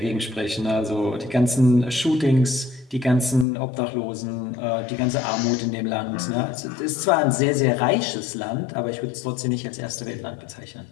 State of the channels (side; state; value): right; drops out; at 3.5 s